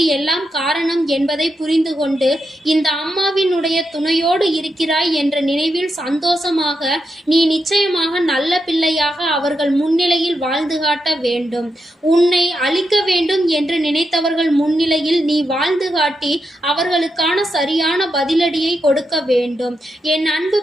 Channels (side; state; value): both; normal; correlation 0.85